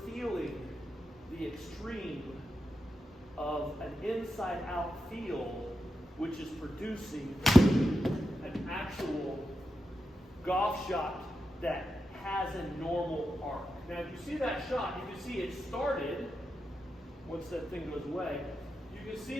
feeling the extreme of an inside-out feel, which is producing an actual golf shot that has a normal arc. Now, if you see that shot, you can see it started, once that thing goes away, you can see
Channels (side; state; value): both; normal; correlation 0.88